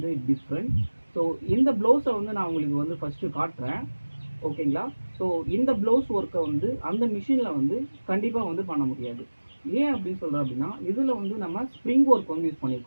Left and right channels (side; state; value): both; inverted; correlation -1.00